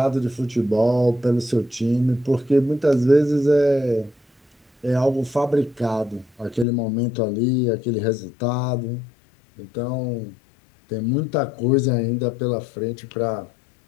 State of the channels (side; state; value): right; drops out; at 6.7 s